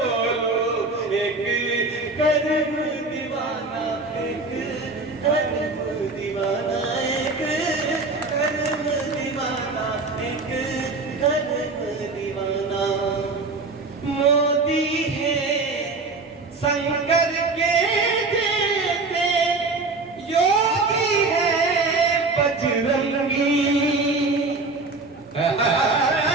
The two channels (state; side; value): quieter; left; 3.6 dB